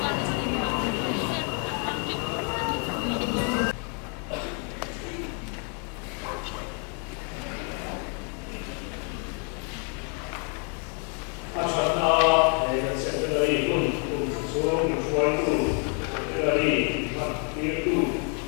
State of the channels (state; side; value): quieter; right; 39.2 dB